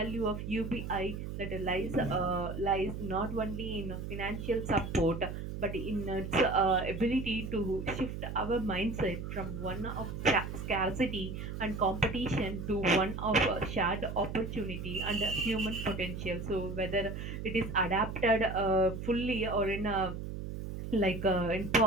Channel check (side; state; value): right; noise; hum, 6 dB below the sound